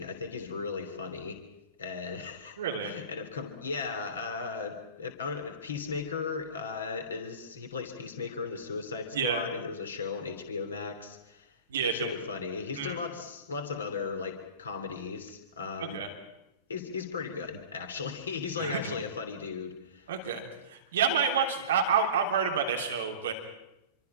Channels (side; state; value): both; inverted; correlation -0.36